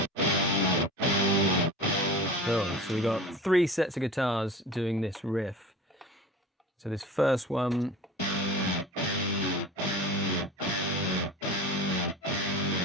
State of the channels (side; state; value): both; normal; correlation 0.36